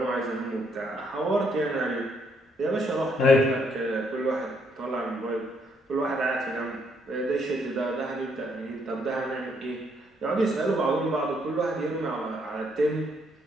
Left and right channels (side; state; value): both; normal; correlation 0.71